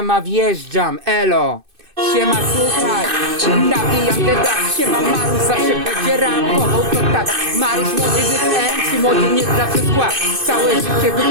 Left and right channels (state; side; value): late; left; 2.6 ms